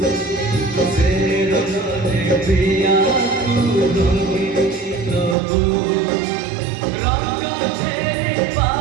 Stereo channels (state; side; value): drops out; left; at 5.4 s